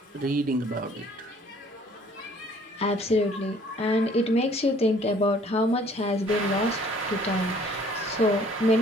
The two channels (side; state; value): both; normal; correlation 0.57